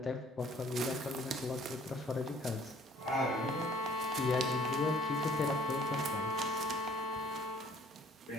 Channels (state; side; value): normal; both; correlation 0.57